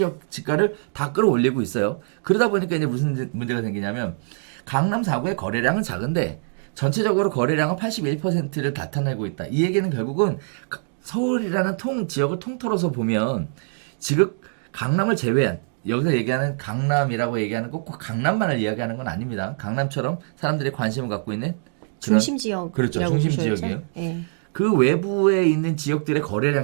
지가를 다 끌어올리고 있어요. 그러다 보니까 이제 무슨 문제가 생기냐면 강남 4구의 거래량은 작은데 전체적으로 거래량은 81%를 나타내고 있다. 이 얘기는 결국은 서울이라는 지역을 통틀어서 보면 지금 강남을 제외한 여기서 얘기하는 강남이라고 얘기하는 꼭 강남만을 이야기하는 건 아닙니다. 강남처럼 사람들이 관심을 갖고 있는 그런 중심 지역. 그렇죠. 중심 지역이에요. 네. 그 외부에 있는 지역들의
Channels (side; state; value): left; silent; 63 dB below the other